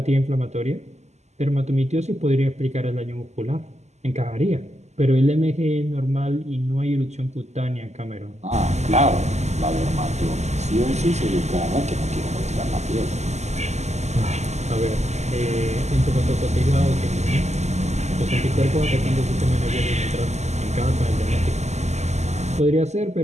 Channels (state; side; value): late; left; 0.33 ms